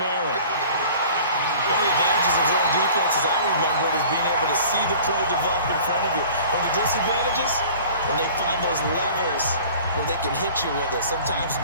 One of the advantages of zone defense, as I remember it, is being able to see the play develop in front of you. One of the disadvantages, when they find those levels where they can hit you with it, sometimes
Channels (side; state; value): both; inverted; correlation -0.45